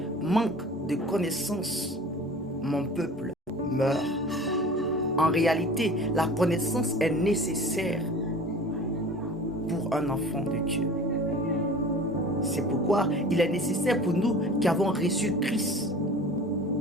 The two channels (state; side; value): normal; both; correlation 0.41